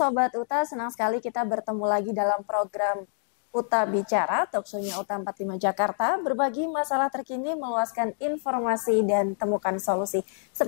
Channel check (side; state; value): right; silent; digital silence